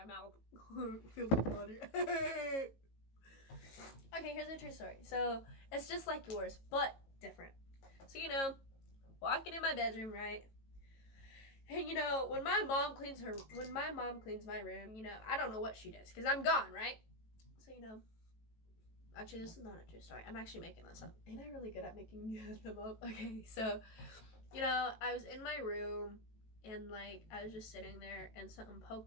mouth. Feel the water. Okay, here's a true story. So, it's just like yours, but different. So, you know, walking in my bedroom, right? And, you know, when my mom cleans my room, you know, I don't know what she does, because I'm gone, right? So, you know, actually, this is not a true story. I'm actually making this up. Ain't I really good at making them up? Okay, so, you know, I was in my room, and, like, I was just sitting there, and something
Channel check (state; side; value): late; right; 18 ms